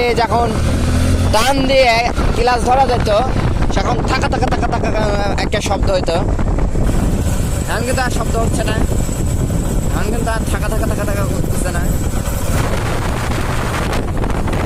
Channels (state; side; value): identical; both; correlation 1.00